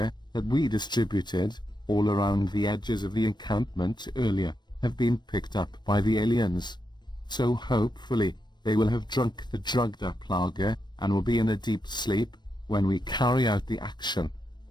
that we distributed all around the edges of the encampment earlier have been picked up by the aliens. So hopefully they will have drunk the drugged up lager and will be in a deep sleep when we carry out the action.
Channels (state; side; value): late; right; 0.21 ms